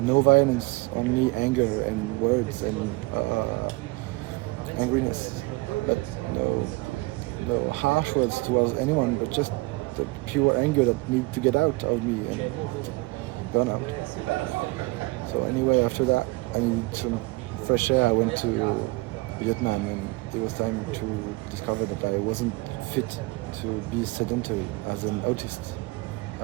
violence, only anger and words and angriness, but no harsh words towards anyone, but just the pure anger that needed to get out of me and burn out. So anyway, after that, I needed some fresh air. I went to Vietnam and it was time to discover that I wasn't fit to be sedentary as an autistic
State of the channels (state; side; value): quieter; left; 23.8 dB